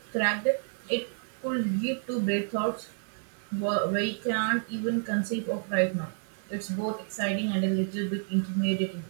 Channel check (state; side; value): silent; left; 58 dB below the other